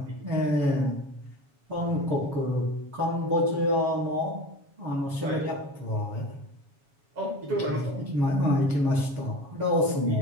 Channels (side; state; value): left; late; 7.2 ms